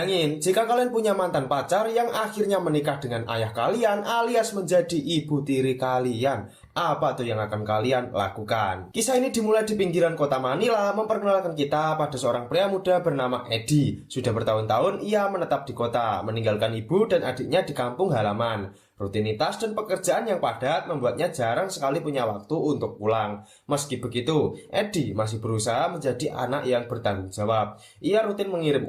jika kalian punya mantan pacar yang akhirnya menikah dengan ayah kalian alias menjadi ibu tiri kalian. Apa tuh yang akan kalian lakukan? Kisah ini dimulai di pinggiran kota Manila, memperkenalkan kita pada seorang pria muda bernama Eddie. Sudah bertahun-tahun ia menetap di kota, meninggalkan ibu dan adiknya di kampung halaman. Rutinitas dan pekerjaan yang padat membuatnya jarang sekali punya waktu untuk pulang. Meski begitu, Eddie masih berusaha menjadi anak yang bertanggung jawab. Ia rutin mengirim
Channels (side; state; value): both; identical; correlation 1.00